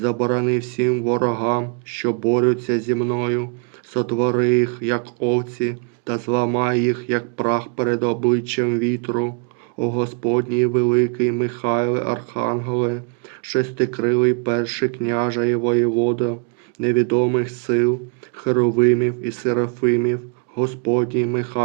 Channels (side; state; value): left; quieter; 35.4 dB